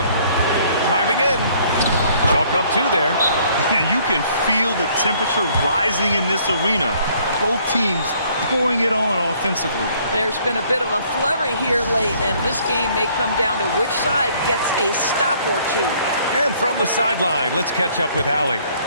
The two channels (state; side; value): inverted; both; correlation -0.61